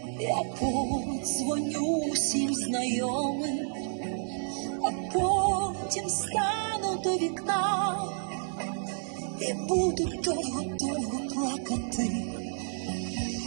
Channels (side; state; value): left; silent; digital silence